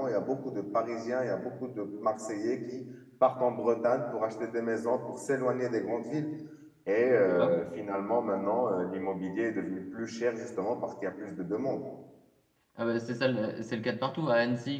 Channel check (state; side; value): identical; both; correlation 1.00